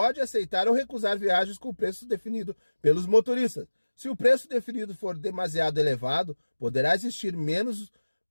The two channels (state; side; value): inverted; both; correlation -1.00